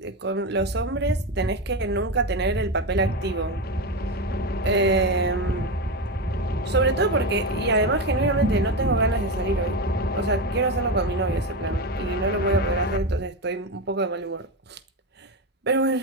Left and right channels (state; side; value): normal; both; correlation 0.15